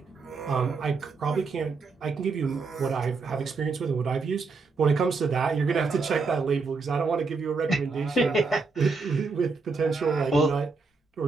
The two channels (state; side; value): quieter; left; 4.3 dB